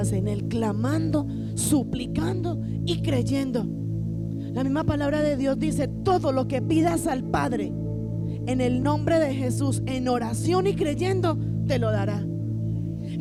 en Él, clamando, suplicando y creyendo. La misma palabra de Dios dice: todo lo que pidas al Padre en el nombre de Jesús, en oración y creyendo, te lo dará.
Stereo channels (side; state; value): both; identical; correlation 1.00